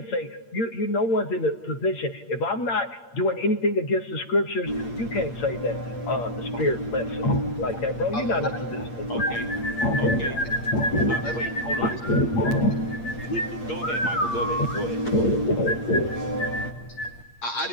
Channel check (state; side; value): late; right; 8.6 ms